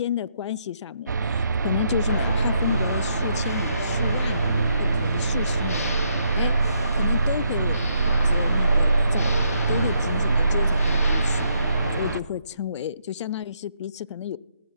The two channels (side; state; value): both; inverted; correlation -0.75